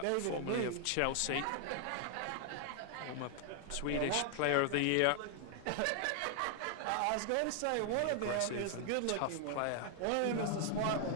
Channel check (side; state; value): both; different; correlation 0.00